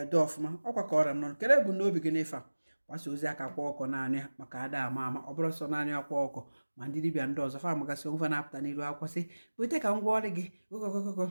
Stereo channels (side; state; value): both; inverted; correlation -1.00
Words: dị ọfụma ọkwa ka ọra nọ kere bụ n'obi gị n'ife a gbasa ozi aka kwa ọkọ naanị maka ada ama ọ bụrụ sọ naanị akwa ọkọ ma ndị dibịa ndị ọzọ fa amagasị onwe fa na-apụta n'iru akwụkwọ sị wete ka m gwa ọrụ gị ụkọkọkọ